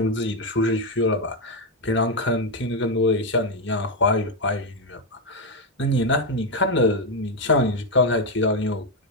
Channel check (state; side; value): normal; both; correlation 0.06